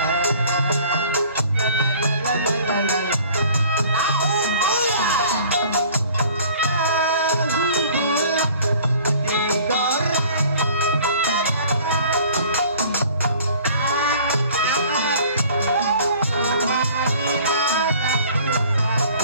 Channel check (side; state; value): both; inverted; correlation -0.50